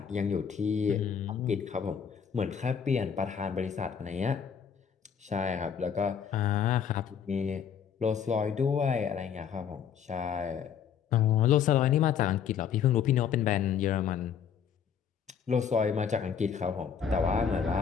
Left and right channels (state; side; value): quieter; right; 7.7 dB